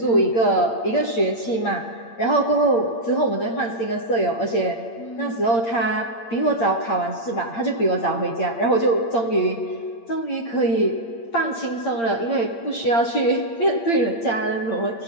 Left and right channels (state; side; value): late; right; 8.7 ms